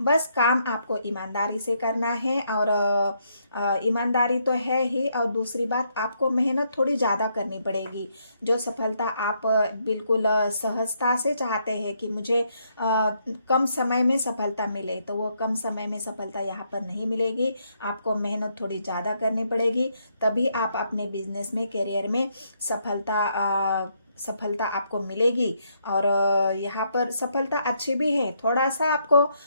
काम आपको ईमानदारी से करना है। और ईमानदारी तो है ही, और दूसरी बात आपको मेहनत थोड़ी ज़्यादा करनी पड़ेगी। जो सफलता आप बिल्कुल सहजता से चाहते हैं कि मुझे कम समय में सफलता मिले, तो वो कम समय में सफलता यहाँ पर नहीं मिलेगी, आपको मेहनत थोड़ी ज़्यादा करनी पड़ेगी, तभी आप अपने बिजनेस में, करियर में सफलता आपको मिलेगी। और यहाँ पर सफलता अच्छी भी है, थोड़ा सा आपको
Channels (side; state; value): both; inverted; correlation -0.74